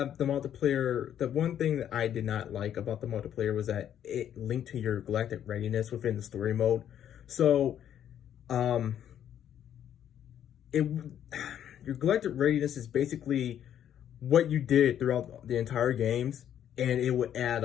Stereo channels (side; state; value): right; quieter; 10.1 dB